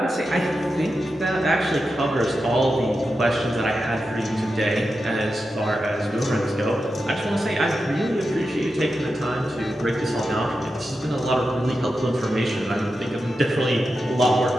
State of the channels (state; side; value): normal; both; correlation 0.90